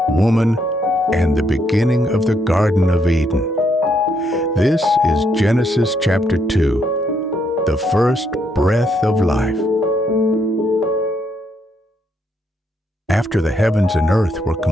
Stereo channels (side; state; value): both; normal; correlation 0.74